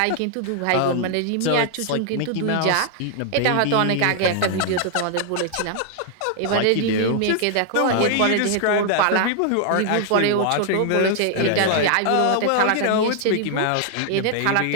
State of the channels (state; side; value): different; both; correlation 0.00